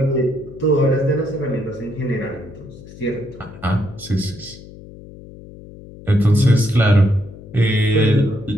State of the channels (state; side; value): noise; left; hum, 18 dB below the sound